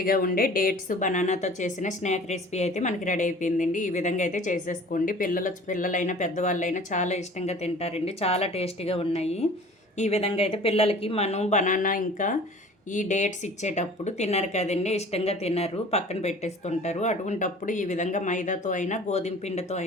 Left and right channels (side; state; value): both; normal; correlation 0.46